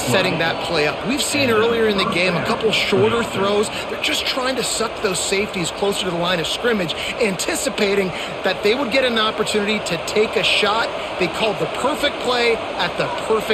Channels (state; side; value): identical; both; correlation 1.00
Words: setting that play up? We've seen earlier in the game a couple shorter throws. They're just trying to suck those safeties closer to the line of scrimmage, anticipating that they would get an opportunity to take a shot. They called the perfect play at the